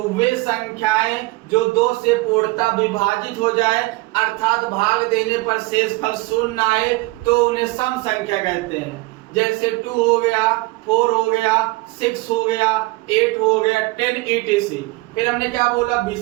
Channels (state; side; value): quieter; left; 22.4 dB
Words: वे संख्याएं जो 2 से पूर्णतः विभाजित हो जाए अर्थात भाग देने पर शेषफल शून्य आए तो उन्हें सम संख्या कहते हैं। जैसे 2 हो गया, 4 हो गया, 6 हो गया, 8 हो गया, 10 etc। फिर हमने क्या बोला,